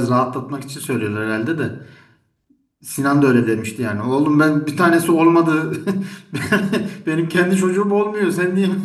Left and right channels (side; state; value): both; identical; correlation 1.00